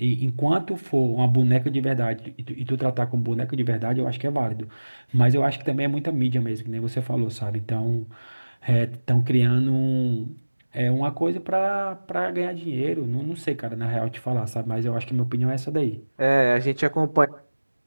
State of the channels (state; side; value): inverted; both; correlation -1.00